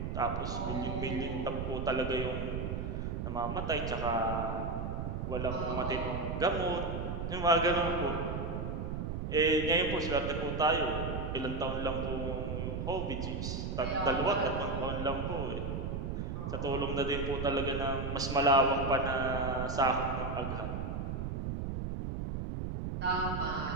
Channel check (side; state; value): right; noise; rumble, 3 dB below the sound